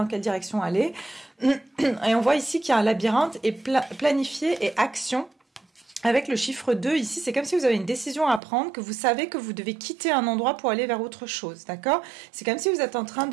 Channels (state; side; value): drops out; left; at 8.4 s